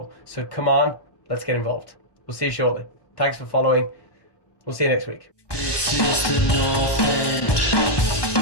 So come on, let's get involved. We'll see you shortly. Thanks for following. We'll see you next week. This is the North End.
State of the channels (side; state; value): right; late; 1.2 ms